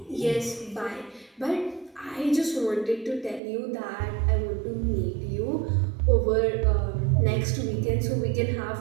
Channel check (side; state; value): left; drops out; at 3.4 s